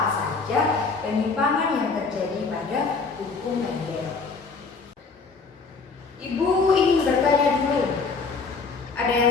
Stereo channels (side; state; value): right; quieter; 4.5 dB